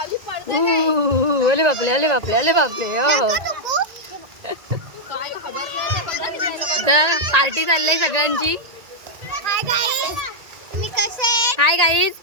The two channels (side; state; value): left; late; 1.9 ms